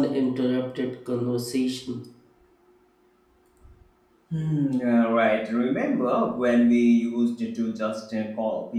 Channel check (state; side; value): identical; both; correlation 1.00